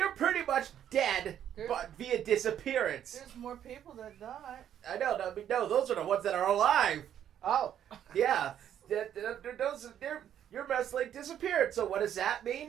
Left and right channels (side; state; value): left; quieter; 10.1 dB